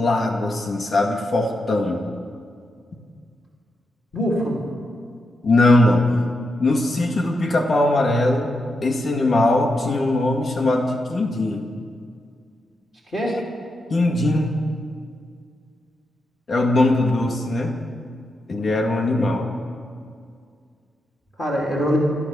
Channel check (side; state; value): both; normal; correlation 0.85